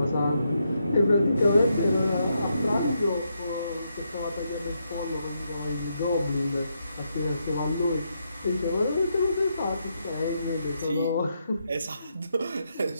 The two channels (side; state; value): both; inverted; correlation -0.81